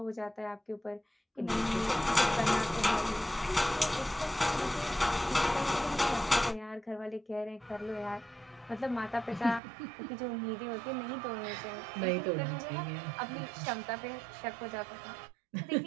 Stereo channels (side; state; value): left; drops out; at 9.6 s